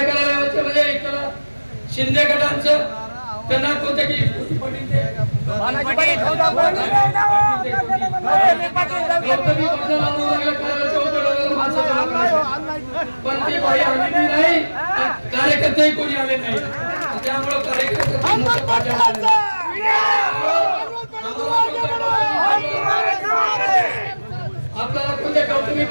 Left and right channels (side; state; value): both; inverted; correlation -1.00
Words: कार्यालयाचे म्हणजे एक शिंदे गटांचं, त्यांना कोणत्या की पण ती बाई आलेली नाही, कार्यकर्ते कोणी आले नाही, त्यामुळे कार्यकर्ते आपल्याला कोणत्या कौटुंबिक